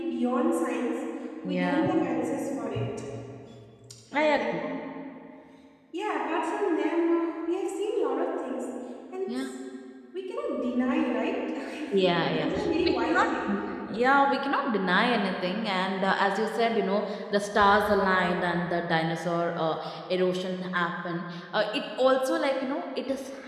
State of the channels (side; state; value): both; identical; correlation 1.00